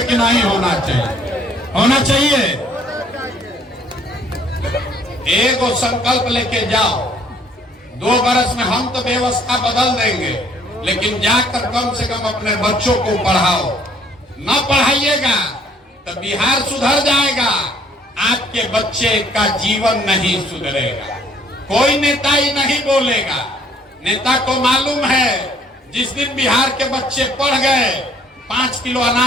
कि नहीं होना चाहिए? होना चाहिए। एगो संकल्प लेके जाओ, 2 बरस में हम तो व्यवस्था बदल देंगे, लेकिन जाकर कम से कम अपने बच्चों को पढ़ाओ। न पढ़ाइएगा तो बिहार सुधर जाएगा, आपके बच्चे का जीवन नहीं सुधरेगा। कोई नेता ही नहीं बोलेगा। नेता को मालूम है जिस दिन बिहार के बच्चे पढ़ गए 5 किलो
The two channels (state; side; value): normal; both; correlation 0.61